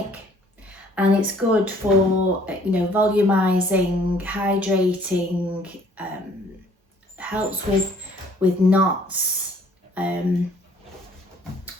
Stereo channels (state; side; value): normal; both; correlation 0.59